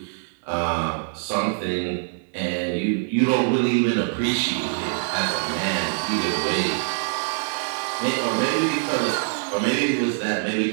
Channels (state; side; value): silent; left; digital silence